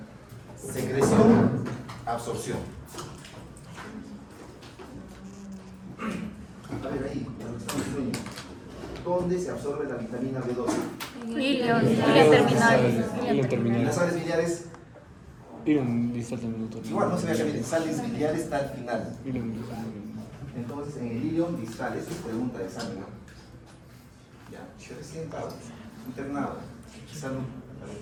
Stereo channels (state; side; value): identical; both; correlation 1.00